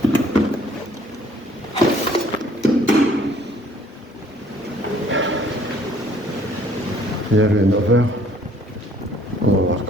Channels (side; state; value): both; normal; correlation 0.59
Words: Il y avait 9 heures. On va voir